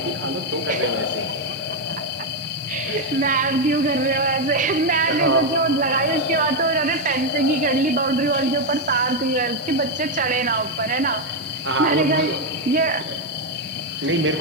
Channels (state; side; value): normal; both; correlation 0.03